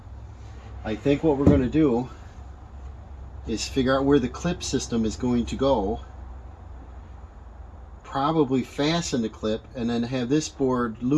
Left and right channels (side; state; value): both; identical; correlation 1.00